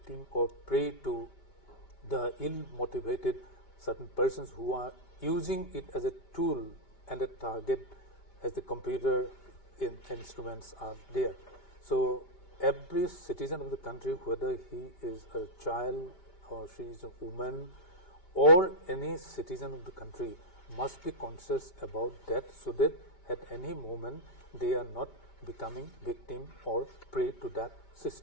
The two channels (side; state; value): right; late; 5.1 ms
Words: or prey to the ill-motivated certain persons who are using it as a tool and a target as the computer instruments are there. So every citizen of the country, whether he is a child or she is a woman or any citizen of the country, must be conscious about that so that at any moment they are not becoming victim or prey to that